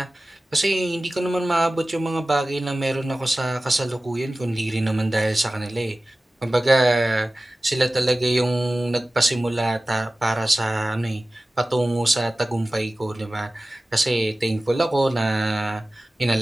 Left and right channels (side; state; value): both; normal; correlation 0.97